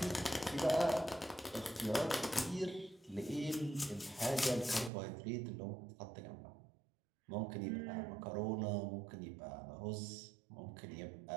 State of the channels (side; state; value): left; drops out; at 4.9 s